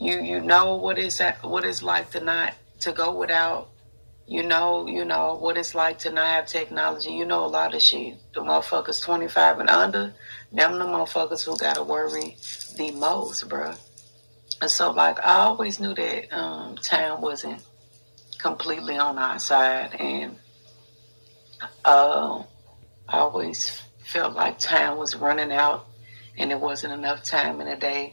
know what it's like to go without. You know what it's like to not have technology. You know a lot of shit. The motherfuckers 25 and under, them the motherfuckers who gotta worry the most, bruh. And so, like, I always knew that time wasn't completely on our side, and I always felt like time was running out and there wasn't enough time in a day,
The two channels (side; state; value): both; inverted; correlation -1.00